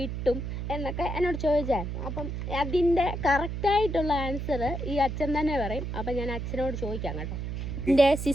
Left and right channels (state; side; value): noise; right; hum, 4 dB below the sound